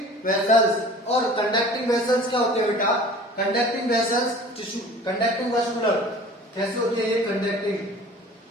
vessels. और कंडक्टिंग वेसल्स क्या होते हैं बेटा? Conducting vessels tissue, conducting vascular. कैसे होते हैं ये कंडक्टिंग?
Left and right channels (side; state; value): both; normal; correlation 0.44